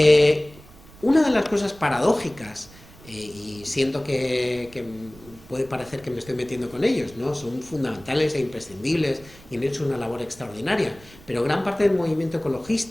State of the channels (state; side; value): noise; right; rumble, 22 dB below the sound